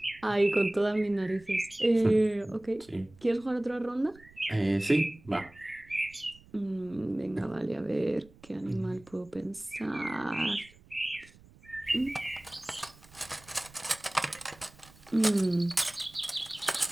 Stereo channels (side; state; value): right; noise; rumble, 25 dB below the sound